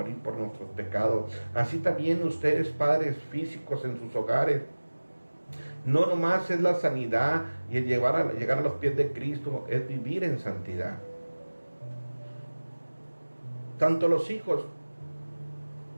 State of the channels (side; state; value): both; inverted; correlation -1.00